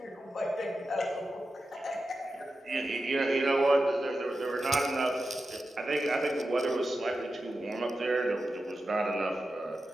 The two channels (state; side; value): normal; both; correlation 0.91